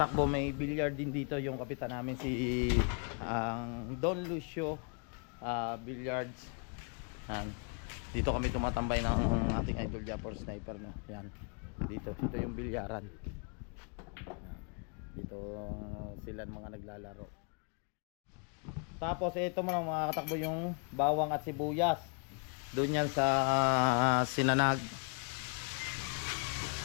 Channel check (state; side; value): quieter; right; 37.7 dB